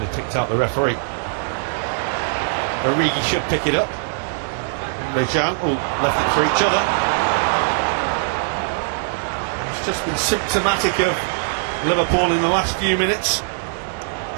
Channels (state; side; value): silent; left; digital silence